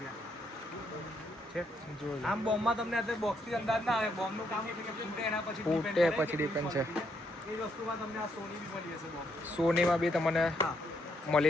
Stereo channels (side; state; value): both; normal; correlation 0.75